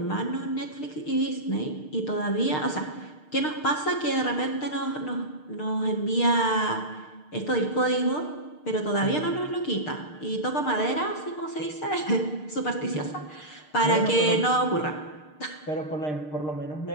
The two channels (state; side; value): late; right; 6.6 ms